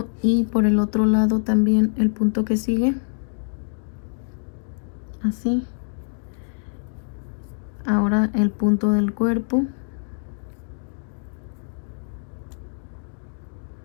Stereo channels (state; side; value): silent; right; digital silence